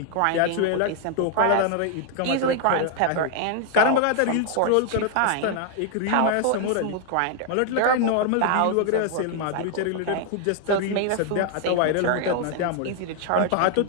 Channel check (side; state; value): both; different; correlation 0.00